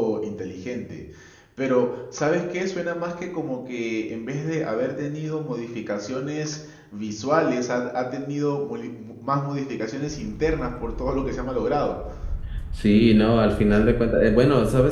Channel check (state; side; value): identical; both; correlation 1.00